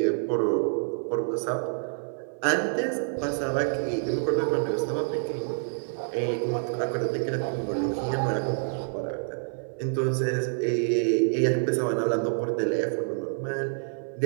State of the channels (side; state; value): left; silent; 57 dB below the other